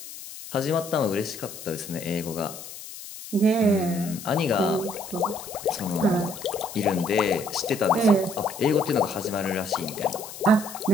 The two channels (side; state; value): left; noise; hiss, 13 dB below the sound